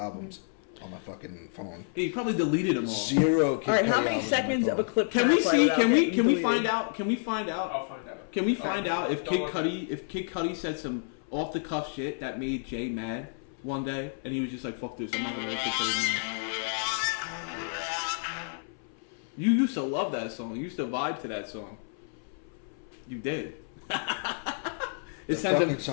on my fucking phone. Hey, you probably deleted them all. Zero Kid All right, Cudi how many albums seconds on of my a phone. clip? Can we see? play Can out? we find out? Can we find out? I'll find out. Can we find out if Kid Don't Cudi said some off the cuff shit that made Jay mad one day, and he was just like, "Fuck this, I'm not gonna like Kid Cudi anymore." You used to love that song. You used to vibe to that song. You did. The It sent fucking him.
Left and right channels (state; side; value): silent; right; 58 dB below the other